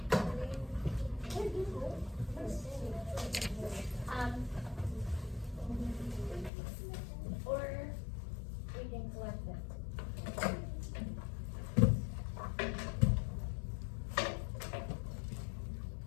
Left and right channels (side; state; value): right; drops out; at 6.5 s